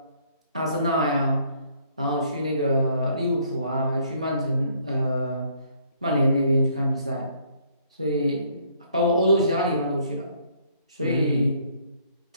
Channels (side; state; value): both; inverted; correlation -0.64